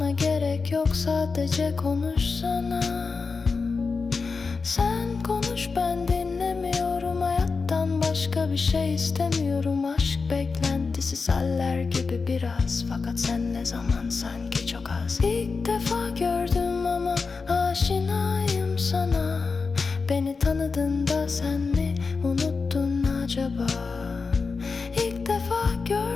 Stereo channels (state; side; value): quieter; right; 4.6 dB